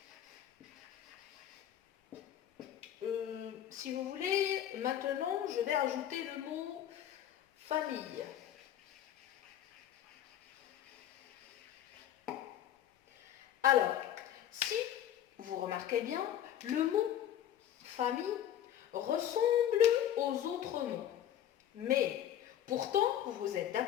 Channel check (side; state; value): right; quieter; 10.8 dB